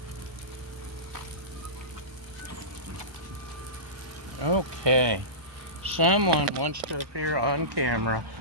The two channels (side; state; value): left; late; 1.2 ms